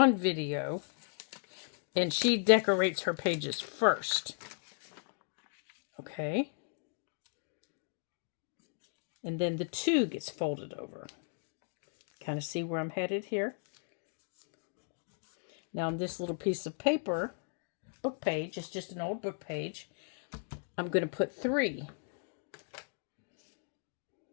video, and she decorates her pages first. Okay. And then the 2 gets folded over. Kind of see where I'm headed here? Now on this little piece of paper, book page, it's just an old book page, I'm going to put 3.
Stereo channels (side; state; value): right; silent; digital silence